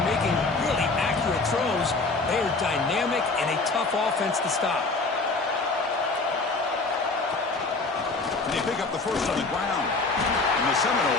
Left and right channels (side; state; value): right; quieter; 3.7 dB